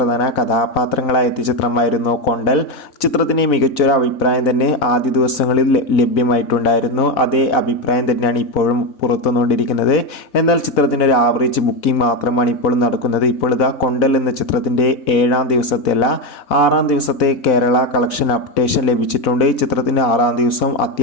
കഥാപാത്രങ്ങളായ എത്തിയ ചിത്രമായിരുന്നു കൊണ്ടൽ. ചിത്രത്തിന് മികച്ചൊരു അഭിപ്രായം തന്നെ ആദ്യ ദിവസങ്ങളിൽ ലഭ്യമായിട്ടുണ്ടായിരുന്നു. അതേ അഭിപ്രായം തന്നെയാണ് ഇപ്പോഴും പുറത്തുവന്നുകൊണ്ടിരിക്കുന്നത്. എന്നാൽ ചിത്രത്തിൻ്റെ ഒരു ആവറേജ് ബുക്കിംഗ് മാത്രമാണ് ഇപ്പോൾ നടക്കുന്നത്. ഇപ്പോൾ ഇതാ കൊണ്ടൽ എന്ന ചിത്രത്തിൻ്റെ 7ാം ദിവസത്തെ അല്ല 6ാം ദിവസത്തെ കേരള കളക്ഷൻ അപ്ഡേഷൻ ലഭിച്ചിട്ടുണ്ട്. ചിത്രത്തിൻ്റെ 6ാം ദിവസം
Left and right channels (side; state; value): right; late; 4.0 ms